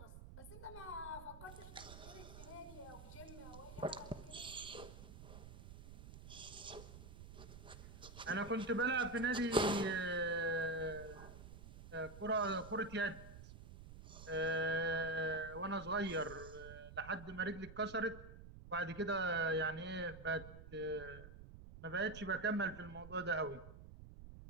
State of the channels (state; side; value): noise; right; rumble, 14 dB below the sound